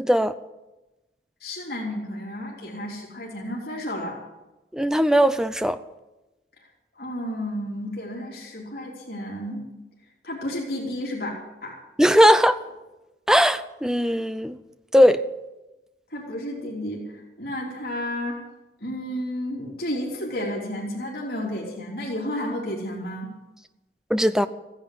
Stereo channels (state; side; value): normal; both; correlation 0.85